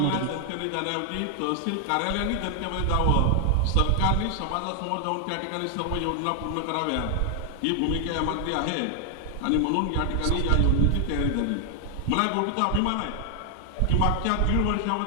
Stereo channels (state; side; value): different; both; correlation 0.00